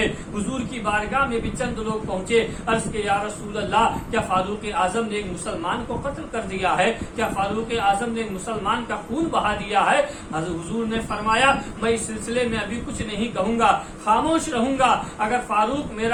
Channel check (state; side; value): identical; both; correlation 1.00